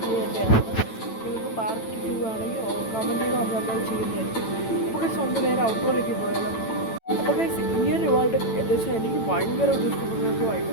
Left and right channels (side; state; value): right; late; 9.0 ms